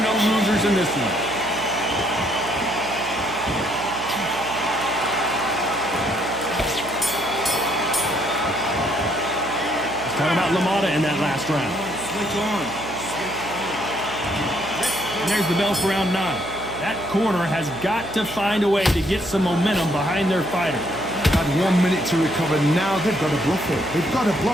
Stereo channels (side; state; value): right; noise; hum, 14 dB below the sound